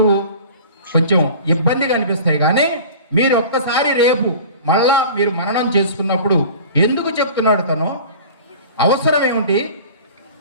కొంచెం ఇబ్బందిగా అనిపిస్తాయి, కానీ మీరు ఒక్కసారి రేపు మళ్ళా మీరు మననం చేసుకున్నప్పుడు ఎందుకు చెప్తున్నాడు తను, అవసరం ఏమిటి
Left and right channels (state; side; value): inverted; both; correlation -0.41